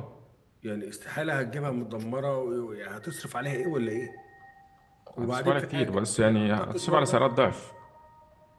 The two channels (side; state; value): both; identical; correlation 1.00